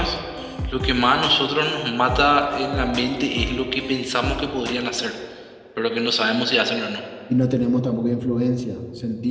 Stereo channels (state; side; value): identical; both; correlation 1.00